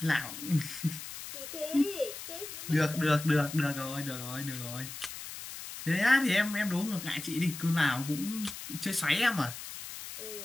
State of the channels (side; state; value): left; noise; hiss, 10 dB below the sound